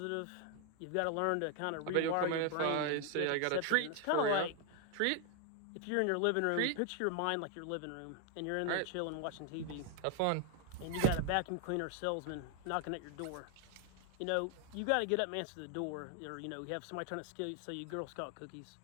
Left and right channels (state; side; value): different; both; correlation 0.00